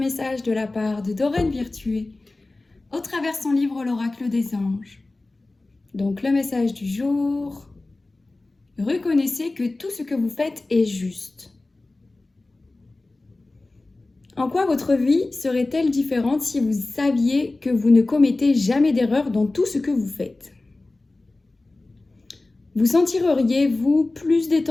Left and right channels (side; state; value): right; quieter; 3.1 dB